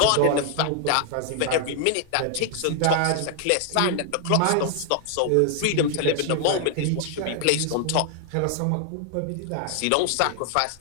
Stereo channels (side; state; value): both; different; correlation 0.00